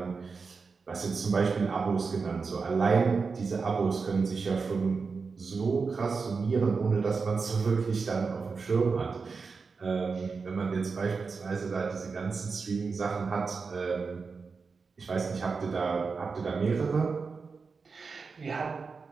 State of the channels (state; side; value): quieter; left; 4.8 dB